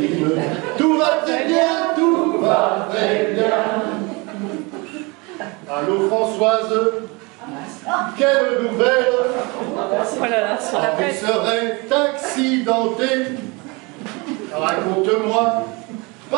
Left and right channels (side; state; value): left; quieter; 27.3 dB